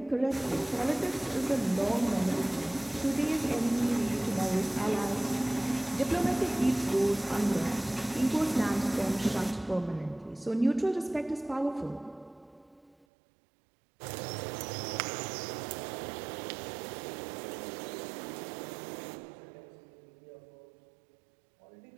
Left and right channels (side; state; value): left; drops out; at 13.0 s